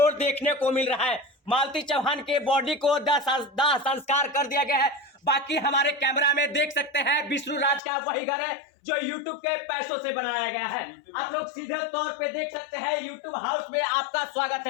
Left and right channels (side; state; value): right; drops out; at 7.8 s